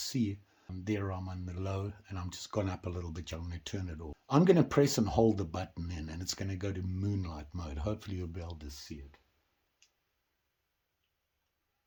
There I'm on the low and I'm just gone up a little bit. I'm going to turn it off. I'm going to press and hold the button in and it's going to go to moonlight mode. Hopefully you'll be able to see it.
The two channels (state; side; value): identical; both; correlation 1.00